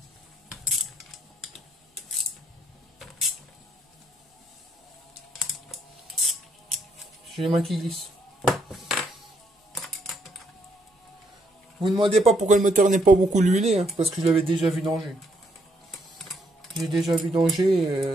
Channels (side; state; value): both; normal; correlation 0.73